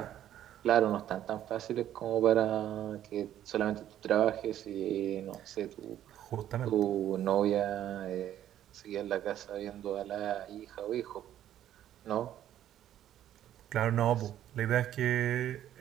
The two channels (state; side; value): quieter; left; 11.6 dB